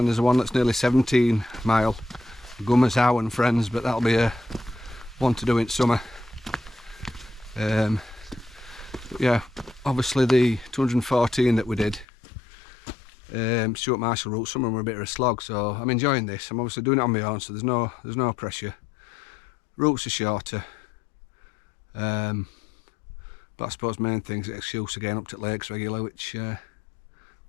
there's one that's nearly 17 mile, Gummers Howe and Friends, but that'll be a one to do in summer. But yeah, obviously the 214 that we did, Stuart Marshall route, some of them were a bit of a slog, so I'm enjoying this. I'm obviously doing it on my own, so there's no pressure. Routes are shorter, but I suppose main thing's the excuse of getting up to lakes regular, which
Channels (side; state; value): right; drops out; at 12.1 s